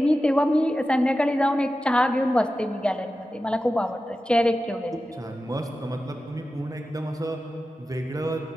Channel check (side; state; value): both; normal; correlation 0.93